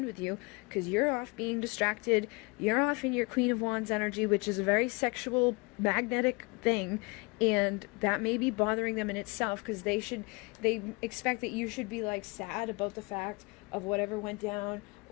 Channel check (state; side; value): quieter; right; 28.1 dB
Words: with you, because you're off being distracted. You're off in your Queen of Wands energy, which is a very sexual, magnetic thing, and that may be bothering them in itself, because they expect that you should be like sad about the fact of whatever went down,